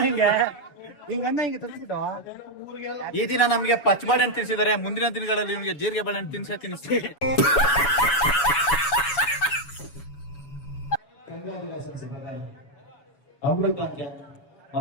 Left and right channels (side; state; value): right; late; 7.1 ms